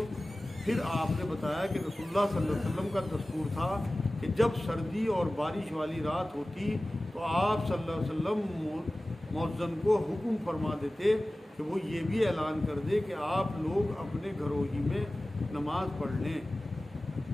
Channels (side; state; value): both; normal; correlation 0.97